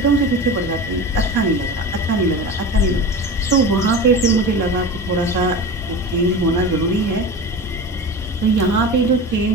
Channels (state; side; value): normal; both; correlation 0.30